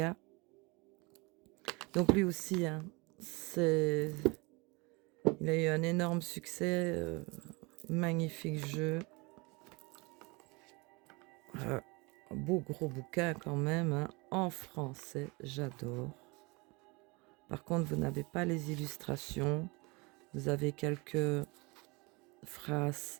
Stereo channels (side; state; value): left; quieter; 27.1 dB